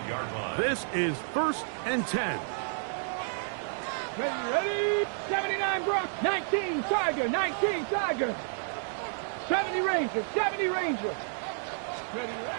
line. This is 1st and 10. Ready? 79 Brock, 19 Tiger, 19 Tiger. 70 Ranger, 70 Ranger. Ready?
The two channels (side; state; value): left; silent; digital silence